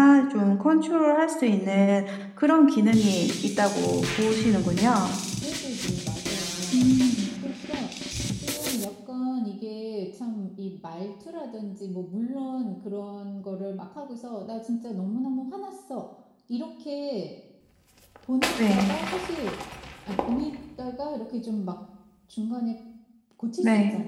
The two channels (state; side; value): identical; both; correlation 1.00